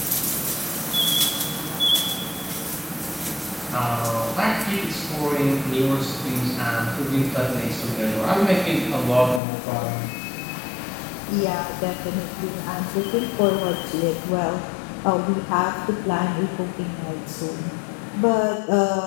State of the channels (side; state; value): right; drops out; at 9.4 s